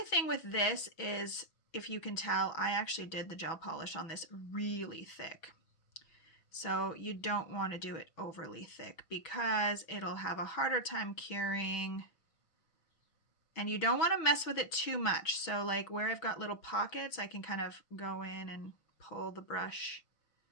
thing with this is, if you can tell, I actually did the gel polish on this really thick. So you don't want to do it overly thick because it'll have a harder time curing. And you don't want to mess with it too much. So like where I've got little pockets, I can kind of go in and pull the brush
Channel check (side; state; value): right; late; 6.1 ms